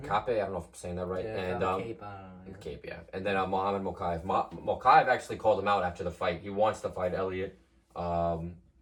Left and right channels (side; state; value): both; identical; correlation 1.00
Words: Kape, I don't know if I'm saying that right. Yeah, and Cape, Cape, yeah. And then Mohamed Mokaev. Mokaev actually called him out after the fight. He wants to fight Elliott. Mokaev